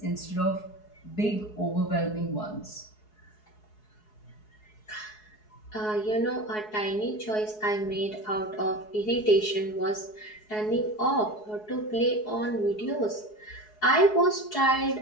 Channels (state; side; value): late; right; 4.7 ms